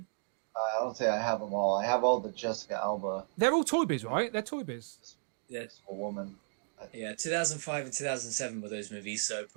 I don't say I have them all. I have all the Jessica Alba. They're all Toy Biz, right? They're Toy Biz. Yeah. A woman. Yeah, 2005 and 2007 were those movies, so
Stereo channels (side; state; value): left; silent; digital silence